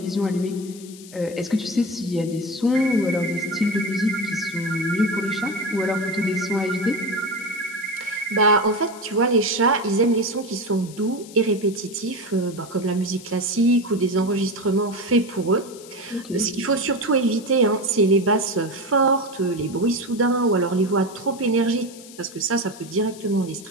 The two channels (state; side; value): noise; left; hiss, 18 dB below the sound